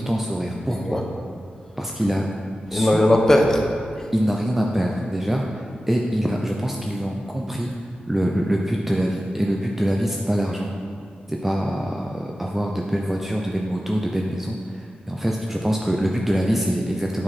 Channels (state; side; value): normal; both; correlation 0.94